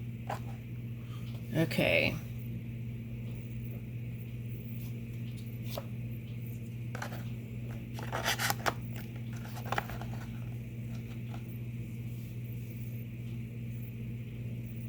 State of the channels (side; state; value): both; identical; correlation 1.00